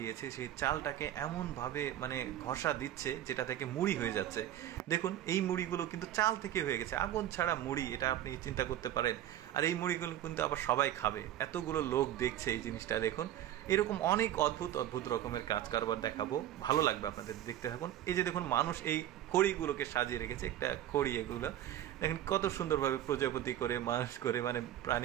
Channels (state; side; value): quieter; left; 12.1 dB